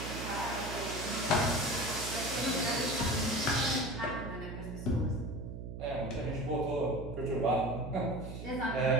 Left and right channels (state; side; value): noise; right; hum, 8 dB below the sound